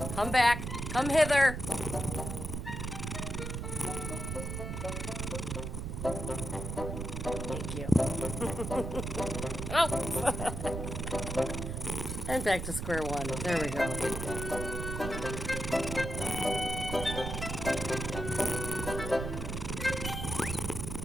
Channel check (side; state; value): right; noise; rumble, 4 dB below the sound